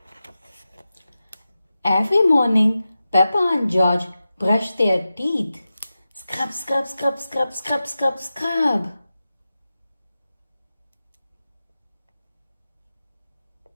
Every morning, Peppa and George brush their teeth. Scrub, scrub, scrub, scrub, scrub, scrub, scrub.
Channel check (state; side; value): inverted; both; correlation -0.93